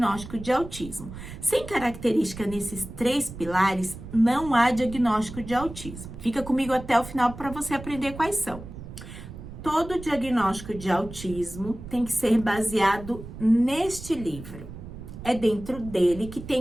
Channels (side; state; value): right; noise; rumble, 13 dB below the sound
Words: de autismo. Sem característica nesses 3 pilares, não há diagnóstico de autismo. Fica comigo até o final para você aprender quais são. Todo diagnóstico de autismo tem que ser baseado neste livro. É dentro dele que